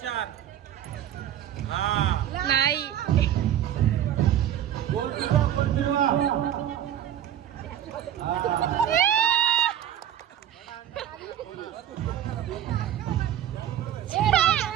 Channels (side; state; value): left; quieter; 10.8 dB